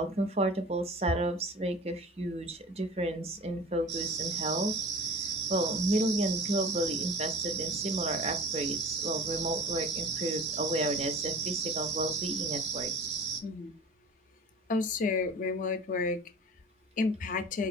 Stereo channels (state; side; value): normal; both; correlation 0.41